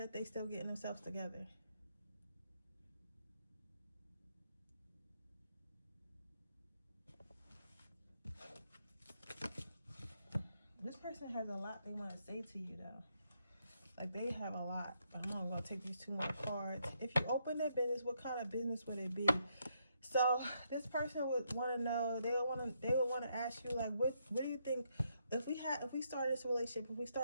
they still getting themselves together. This person has a lot they want to say to you, though. Like, they have a lot. But I'm not going to take these 2 more cards. If you open their business, what kind of business would it be? So this person would want to know. They would want to ask you, like, what do you think if we started this relationship, if we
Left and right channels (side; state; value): both; inverted; correlation -0.77